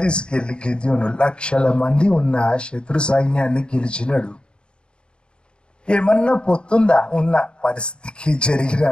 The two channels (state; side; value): late; right; 0.051 ms